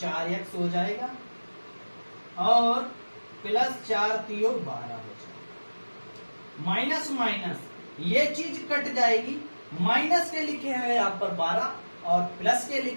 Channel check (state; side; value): inverted; both; correlation -1.00